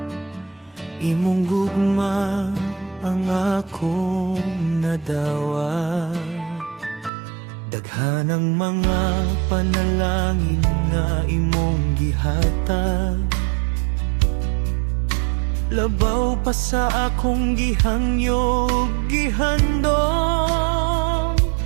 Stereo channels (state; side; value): drops out; left; at 7.1 s